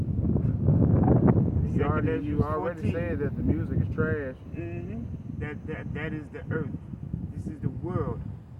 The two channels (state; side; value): identical; both; correlation 1.00